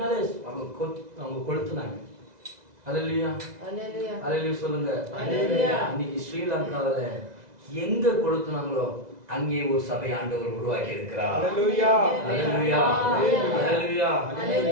அவங்க கொளுத்துனாங்க. ஹல்லேலூயா ஹல்லேலூயா சொல்லுங்க. இன்னைக்கு ஸ்ரீலங்காவில எங்க கொளுத்துனாங்களோ அங்கே ஒரு சபை ஆண்டவர் உருவாக்கி இருக்கிறார். ஹல்லேலூயா ஹல்லேலூயா ஹல்லேலூயா.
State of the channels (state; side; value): late; left; 2.0 ms